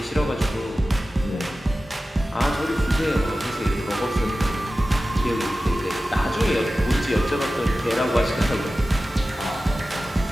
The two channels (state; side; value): normal; both; correlation 0.95